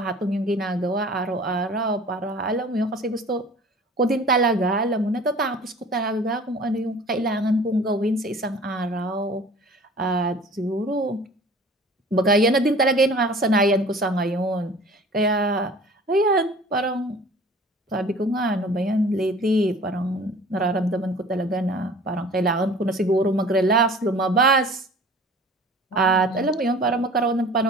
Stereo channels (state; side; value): normal; both; correlation 0.45